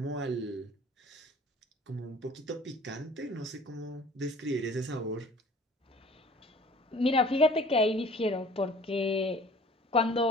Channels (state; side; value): normal; both; correlation 0.49